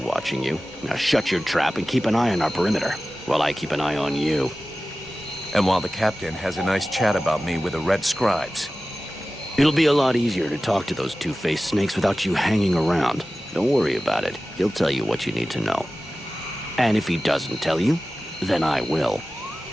you. Now shut your trap and keep an eye on our perimeter, while I keep an eye on you. And while the captain has a nice chat about me with the red scribes. It'll be a lot easier to talk to those two-faced snakes without you hanging around. Don't worry about it. He'll tell you what you need to know. And if he doesn't tell you, then I will.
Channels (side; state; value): both; normal; correlation 0.96